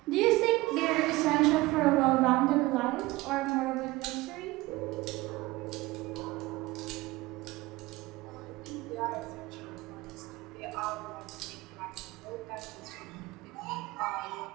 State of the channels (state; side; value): quieter; left; 20.4 dB